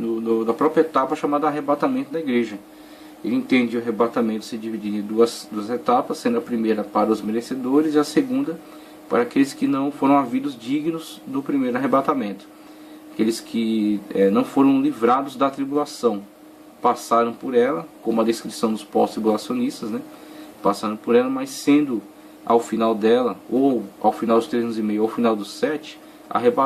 própria etapa chamada arrebatamento da igreja. Ele entende o arrebatamento se dividir em duas etapas, sendo a primeira para os merecedores e a segunda para aqueles que não foram havidos dignos do primeiro arrebatamento. Aqueles que não foram livrados da tribulação, passaram por ela, como a descrição dos pós-tribulacionistas, passaram por ela, mas sendo ao final dela, ou ao final dos 3 anos e meio, ou ao final dos 7,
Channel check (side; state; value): both; identical; correlation 1.00